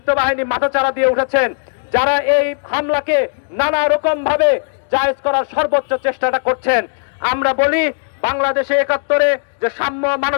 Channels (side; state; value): right; silent; 68 dB below the other